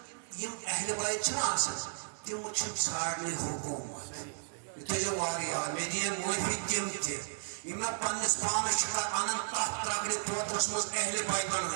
یم اہل بیت چھنا آسان تم چھن ساڑنے حکومت اتجا واریا میدین موفی تم تی یمنا پانس پانس چھکا آنن تحت ترگلی توترس مز اہل بیت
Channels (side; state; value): left; silent; digital silence